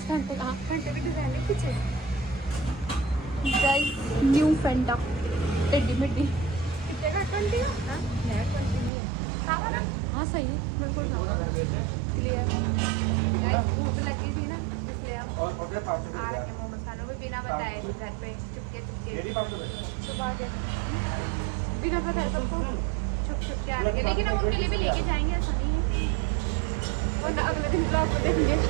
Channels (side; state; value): left; drops out; at 8.9 s